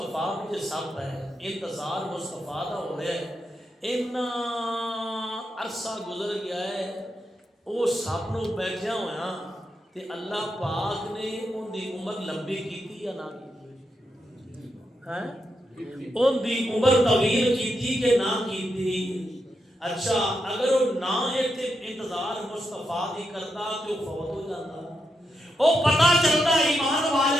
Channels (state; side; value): normal; both; correlation 0.84